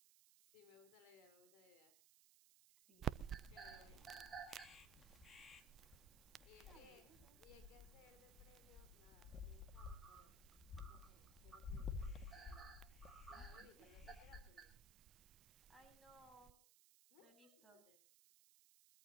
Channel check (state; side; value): noise; right; hiss, 19 dB below the sound